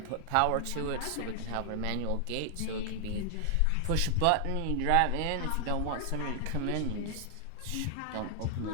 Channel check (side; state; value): both; different; correlation 0.00